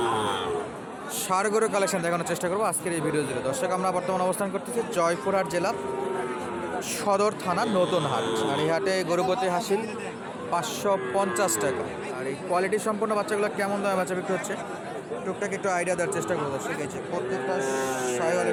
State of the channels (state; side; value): identical; both; correlation 1.00